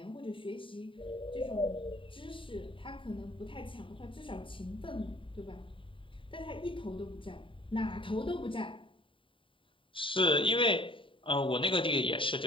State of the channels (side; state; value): right; late; 0.25 ms